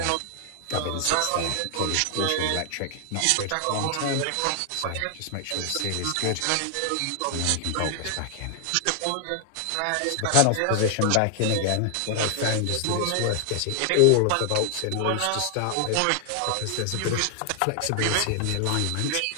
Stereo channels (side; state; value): both; different; correlation 0.00